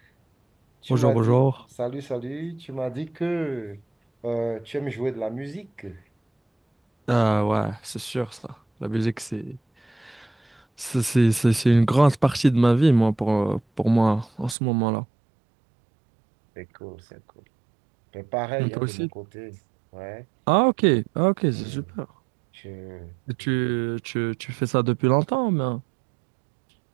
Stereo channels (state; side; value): drops out; left; at 14.6 s